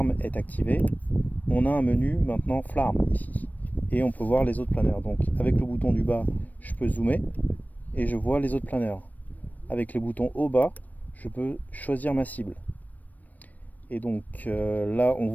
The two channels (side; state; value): right; late; 0.079 ms